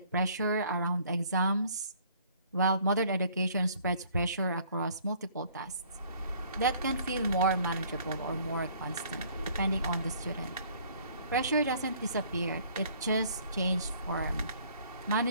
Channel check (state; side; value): inverted; both; correlation -0.58